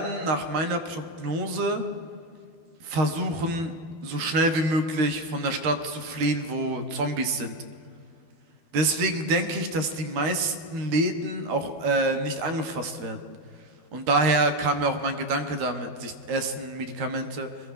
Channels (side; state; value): left; late; 12 ms